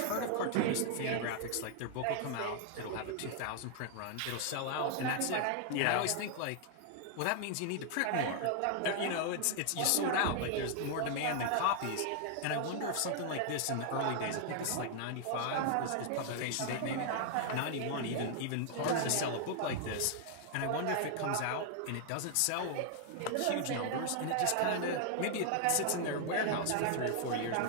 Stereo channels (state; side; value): different; both; correlation 0.00